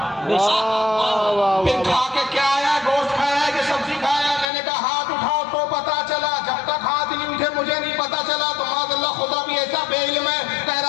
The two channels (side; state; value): right; drops out; at 4.5 s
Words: پھر کھا کے کیا آیا، گوشت کھایا ہے کہ سبزی کھایا ہے۔ میں نے کہا ہاتھ اٹھاؤ تو پتا چلا، جب تک ہاتھ نہیں اٹھے مجھے نہیں پتا چلا۔ تو معاذ اللہ خدا بھی ایسا بے علم ہے، کہہ